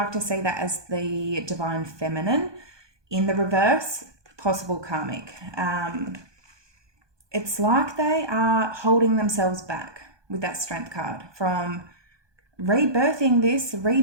to see that as the divine feminine. In the reverse, possible karmic. It's like they are holding themselves back with that Strength card from rebirthing this,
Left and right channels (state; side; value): late; left; 1.2 ms